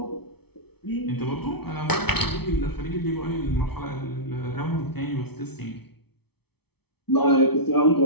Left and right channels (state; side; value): late; right; 0.97 ms